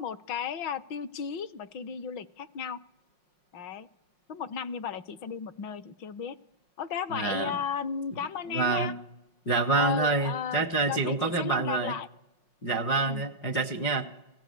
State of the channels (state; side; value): late; right; 5.6 ms